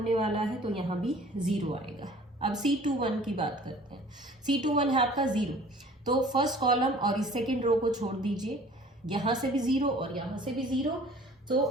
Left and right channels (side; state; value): both; normal; correlation 0.49